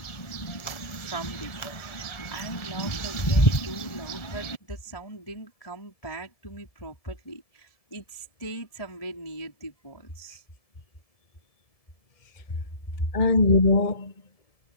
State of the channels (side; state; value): right; late; 1.7 ms